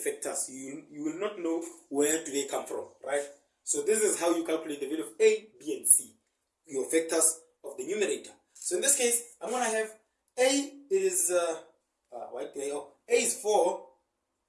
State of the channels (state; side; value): identical; both; correlation 1.00